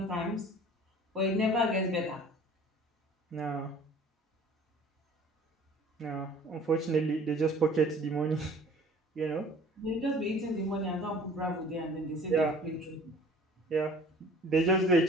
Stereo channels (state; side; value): normal; both; correlation 0.49